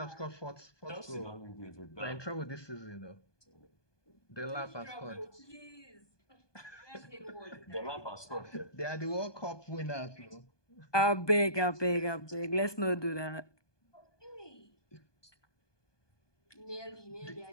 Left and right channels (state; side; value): late; right; 1.2 ms